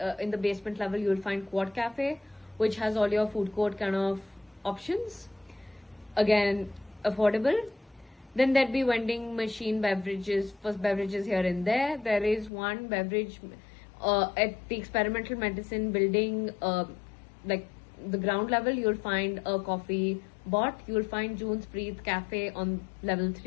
in the basement level, you'll find Quad Cafe, which has all your food court kind of options. Again, affordable. Then there'd be vending machine beverages, first beverages here and there. There is one beverage at the Experimental Medicine building, like the ground level, you'll find a coffee bot. You'll find June's Breathe Cafe on level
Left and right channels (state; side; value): drops out; right; at 12.5 s